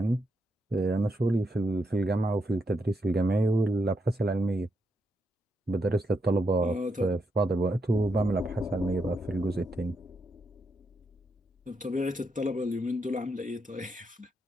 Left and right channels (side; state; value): both; normal; correlation 0.82